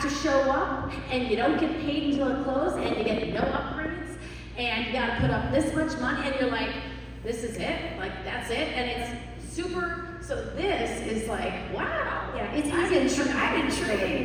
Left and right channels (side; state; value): both; identical; correlation 1.00